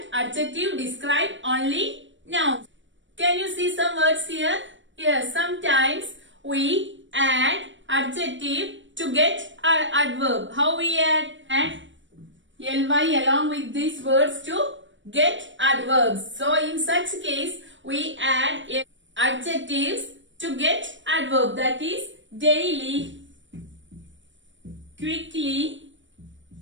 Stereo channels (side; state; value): left; late; 0.55 ms